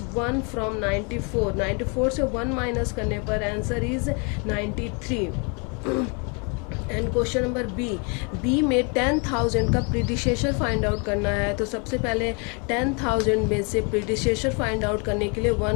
1 from 94। 94 से 1 माइनस करने पर answer is 93। And question number B में 10,000 का प्रीडिसेसर फाइंड आउट करना है। तो सबसे पहले 10,000 में से प्रीडिसेसर फाइंड आउट करने के लिए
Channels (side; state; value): right; quieter; 34.6 dB